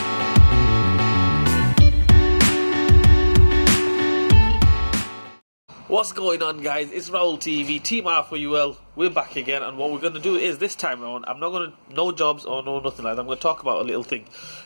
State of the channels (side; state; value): both; inverted; correlation -1.00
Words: going on, guys? It's Raul TV, Team Flywheel. We're back again, and what we're going to do is, this time around, I'm not going to, no jobs or no nothing like that. I'm going to talk about a little thing,